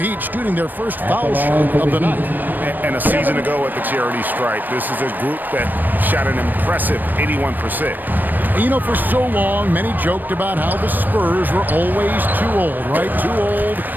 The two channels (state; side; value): late; left; 0.090 ms